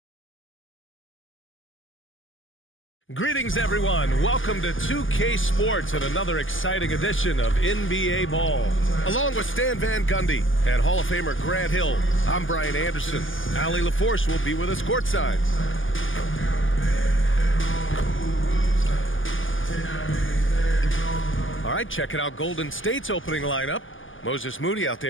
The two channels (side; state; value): right; late; 0.58 ms